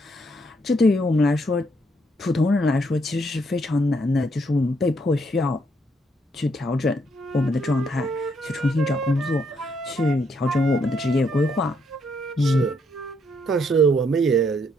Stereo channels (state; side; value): normal; both; correlation 0.73